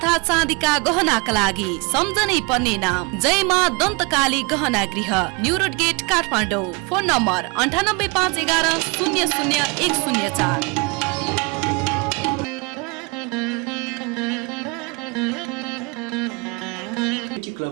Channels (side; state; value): left; quieter; 29.7 dB